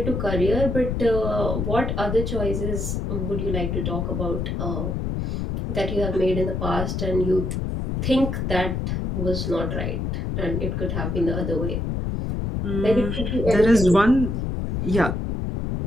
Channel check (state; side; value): noise; left; rumble, 2 dB below the sound